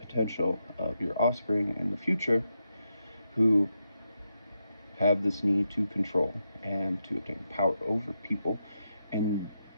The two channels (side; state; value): both; inverted; correlation -0.84